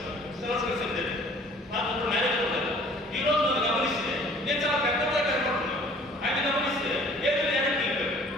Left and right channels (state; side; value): normal; both; correlation 0.52